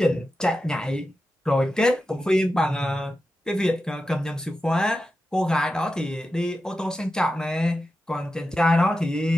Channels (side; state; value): both; normal; correlation 0.91